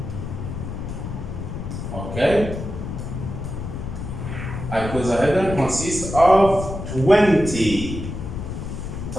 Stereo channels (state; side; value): noise; left; rumble, 6 dB below the sound